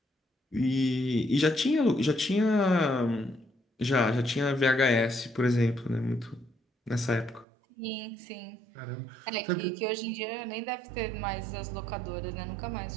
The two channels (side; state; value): left; drops out; at 7.5 s